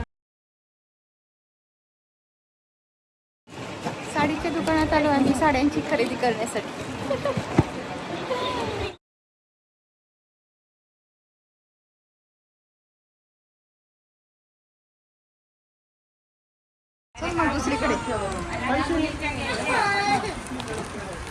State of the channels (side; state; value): both; identical; correlation 1.00